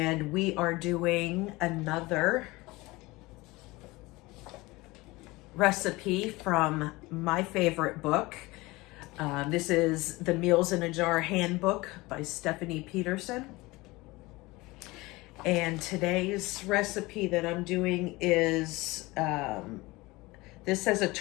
we are doing another recipe from my favorite book. This is the Meals in a Jar Handbook by Stephanie Peterson. And today's recipe that I'm doing is, this says a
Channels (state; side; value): quieter; right; 21.6 dB